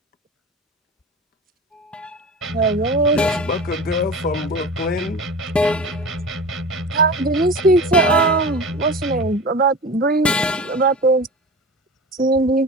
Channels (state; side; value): normal; both; correlation 0.32